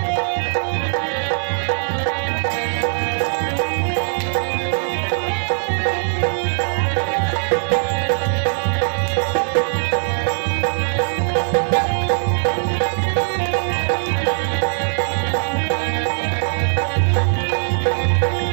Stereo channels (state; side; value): silent; left; digital silence